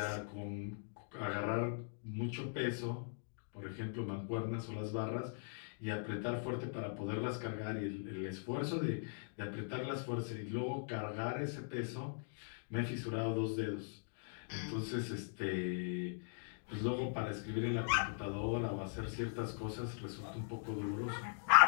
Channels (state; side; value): silent; right; digital silence